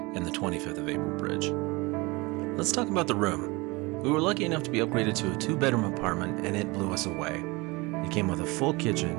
and the 25th of April Bridge. Let's talk about the room. We were lucky enough to be upgraded to a two-bedroom apartment, and it blew us away. It came with a full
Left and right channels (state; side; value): quieter; left; 24.6 dB